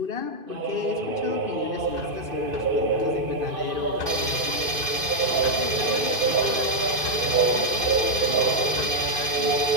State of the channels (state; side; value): late; left; 2.5 ms